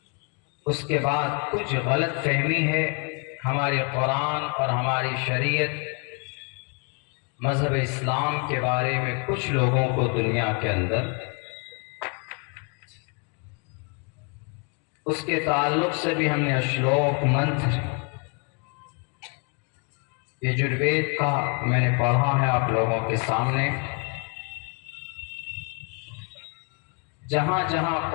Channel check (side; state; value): right; quieter; 37.0 dB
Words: उसके बाद कुछ गलत फहमी है हमारे कुरान और हमारी शरीयत, मज़हब इस्लाम के बारे में कुछ लोगों को दुनिया के अंदर, उसके ताल्लुक़ से भी हमने श्लोक मंत्र यजुर्वेद का मैंने पढ़ा है आप लोगों के सामने। जहाँ जहाँ